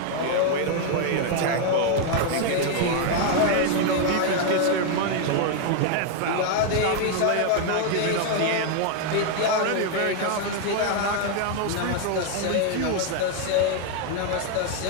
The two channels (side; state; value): both; different; correlation 0.00